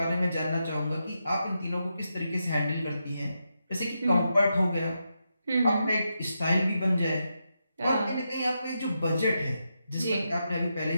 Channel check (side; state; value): both; inverted; correlation -0.85